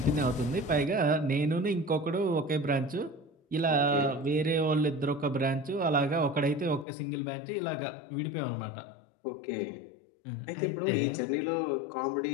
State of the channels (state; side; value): drops out; right; at 6.9 s